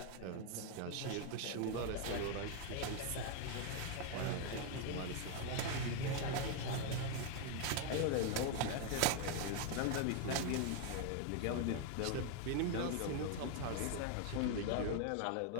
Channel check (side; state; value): both; different; correlation 0.01